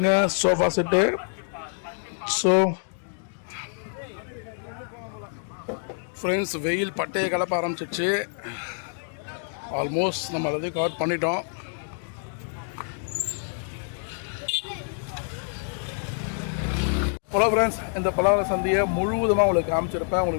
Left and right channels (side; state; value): right; silent; digital silence